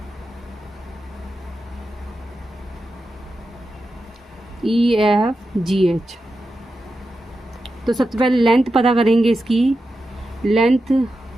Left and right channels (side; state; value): both; normal; correlation 0.90